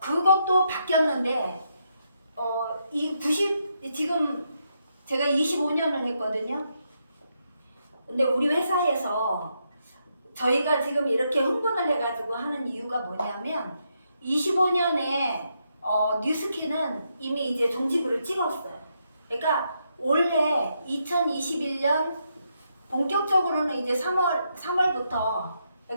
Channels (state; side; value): inverted; both; correlation -0.80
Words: 바뀌었는데 지금 제가 25년을 했거든요. 근데 우리 회사에서 저희가 지금 이렇게 흥분을 해가지고 하는 이유가 뭐냐면 25년에 뉴스킨은 이미 이제 종지부를 찍었어요. 그러니까 올해 2021년 본격적으로는 이제 3월부터